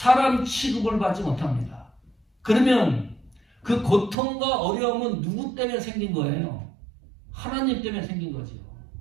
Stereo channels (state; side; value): drops out; left; at 4.2 s